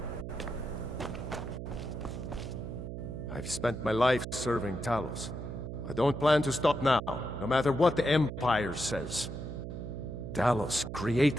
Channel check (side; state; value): right; noise; hum, 7 dB below the sound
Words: I've spent my life serving Talos. I don't plan to stop now, no matter what the Empire says. Talos